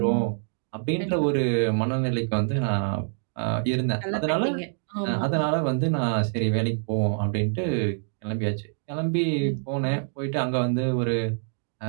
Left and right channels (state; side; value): silent; left; digital silence